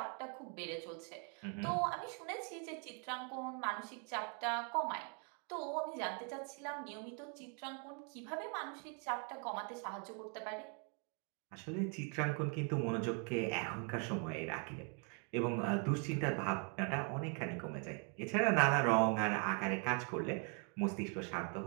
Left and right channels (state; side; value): quieter; left; 38.9 dB